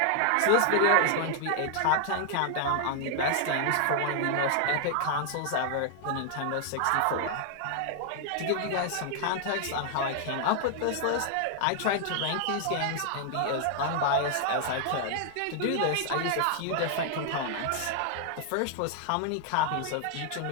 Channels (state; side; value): different; both; correlation 0.00